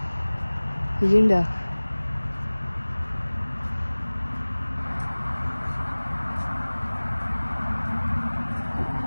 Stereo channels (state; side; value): inverted; both; correlation -1.00